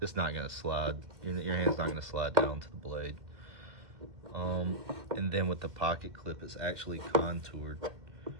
slide. Your hand's not gonna slide down to the blade. And then with the pocket clip, it's actually contoured,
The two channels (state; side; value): late; left; 2.2 ms